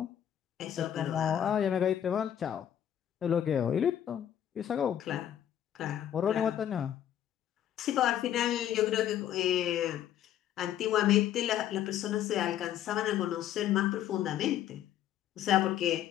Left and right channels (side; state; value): right; quieter; 10.7 dB